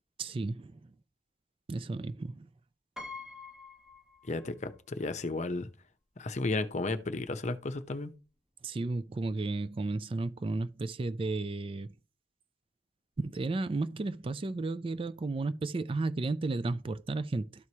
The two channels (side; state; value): both; normal; correlation 0.77